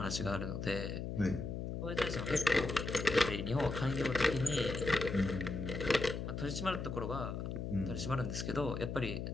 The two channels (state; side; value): noise; left; hum, 4 dB below the sound